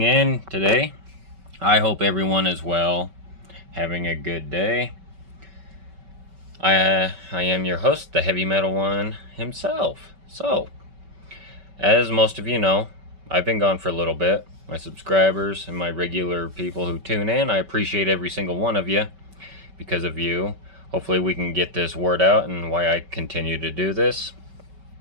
in today. I hope everyone is well, having a good day. I am your host, the Heavy Metal One himself. So, as most of you know, I've been gone for a little bit. My subscribers and my regular people who tune in, I appreciate every single one of you. Because of you, hopefully we can get this word out and why I continue to do this.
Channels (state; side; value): late; left; 5.2 ms